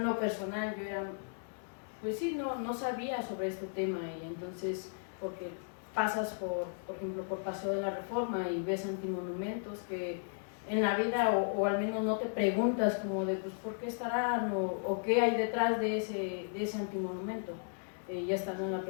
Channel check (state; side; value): silent; right; digital silence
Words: lo personal, yo era, pues sí, no sabía sobre este tema y entonces, porque pasas por ejemplo, por Paseo de la Reforma y ves antimonumentos que en la vida, o al menos no te preguntas como de pues por qué estarán o qué hay detrás de ese antimonumento. Ya estando en la